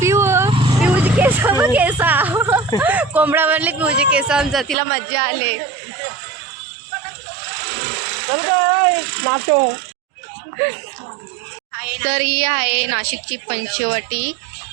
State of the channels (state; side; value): drops out; left; at 4.8 s